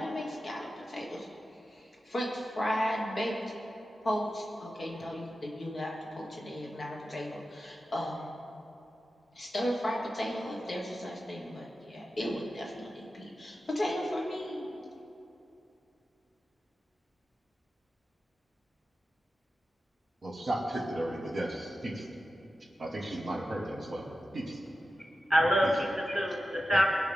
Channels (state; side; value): normal; both; correlation 0.92